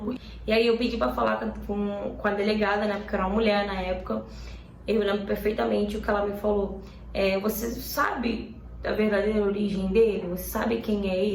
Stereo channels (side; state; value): both; identical; correlation 1.00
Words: E aí eu pedi pra falar com a delegada, né, porque era uma mulher na época. Eu lembro perfeitamente o que ela me falou. Você sabe a verdadeira origem dele? Você sabe quem é